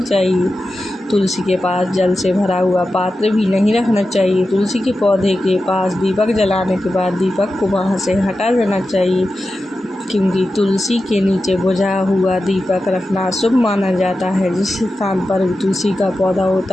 चाहिए। तुलसी के पास जल से भरा हुआ पात्र भी नहीं रखना चाहिए। तुलसी के पौधे के पास दीपक जलाने के बाद दीपक को वहाँ से हटा देना चाहिए, क्योंकि तुलसी के नीचे बुझा हुआ दीपक रखना शुभ माना जाता है। जिस स्थान पर तुलसी का पौधा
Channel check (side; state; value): both; normal; correlation 0.92